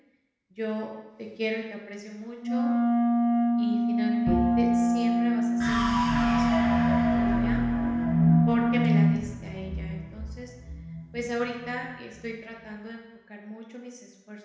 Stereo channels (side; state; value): both; identical; correlation 1.00